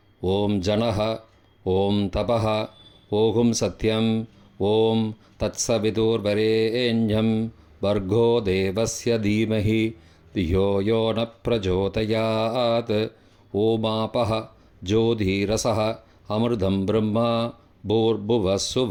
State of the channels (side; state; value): both; identical; correlation 1.00